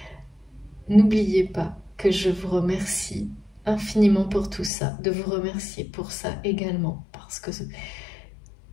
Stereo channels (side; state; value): right; drops out; at 4.7 s